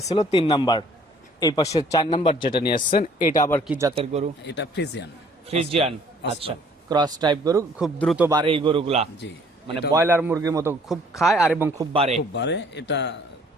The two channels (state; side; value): normal; both; correlation 0.58